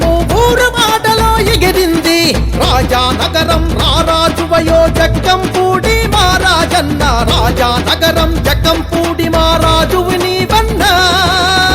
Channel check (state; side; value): identical; both; correlation 1.00